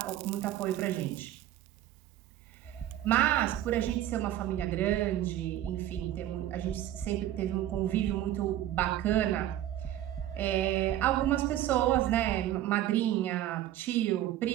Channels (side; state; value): left; quieter; 12.8 dB